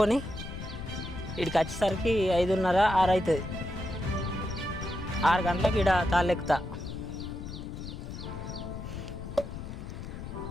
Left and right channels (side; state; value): left; noise; rumble, 9 dB below the sound